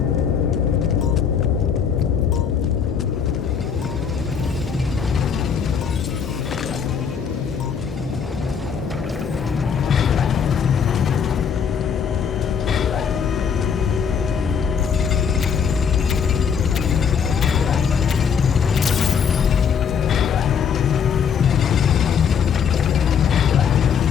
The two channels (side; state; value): right; quieter; 6.9 dB